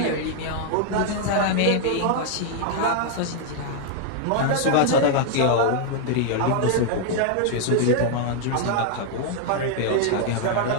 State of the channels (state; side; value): different; both; correlation 0.00